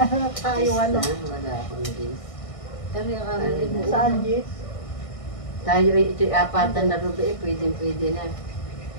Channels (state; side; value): late; right; 1.6 ms